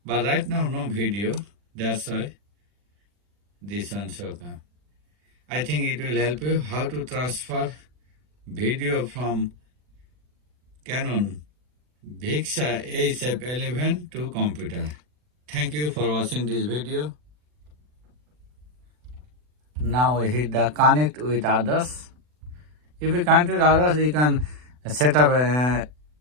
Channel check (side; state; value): left; late; 40 ms